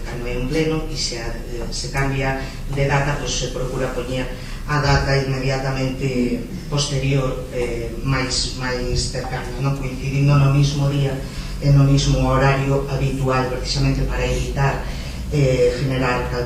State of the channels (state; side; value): identical; both; correlation 1.00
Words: cando é un pleno e se cambia de data, pois se procura poñer a data inmediatamente posterior, máis cercana, non coincidindo no mismo día e no mismo horario habitual, precisamente para evitar generar